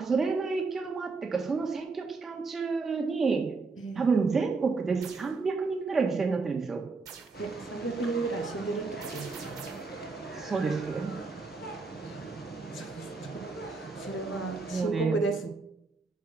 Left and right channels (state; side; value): quieter; left; 4.1 dB